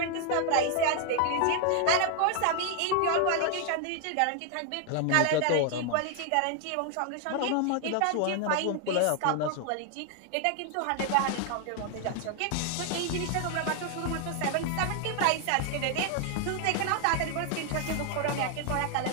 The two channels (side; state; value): both; different; correlation 0.00